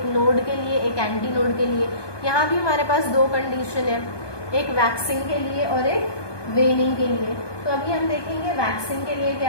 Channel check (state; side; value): late; right; 1.2 ms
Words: नोड के लिए, एक एंटी नोड के लिए. यहाँ भी हमारे पास दो कंडीशन है, एक वैक्सिंग के लिए और एक वेनिंग के लिए. तो अभी हम देखेंगे वैक्सिंग के लिए